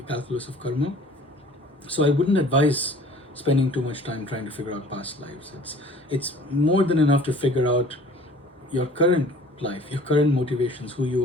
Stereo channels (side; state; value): both; normal; correlation 0.49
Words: calculus of karma. So I wouldn't advise spending too much time trying to figure out past lives. It's more than enough to figure out your current life, your current motivations, who